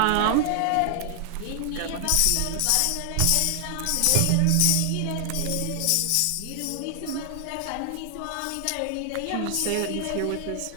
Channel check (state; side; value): different; both; correlation 0.00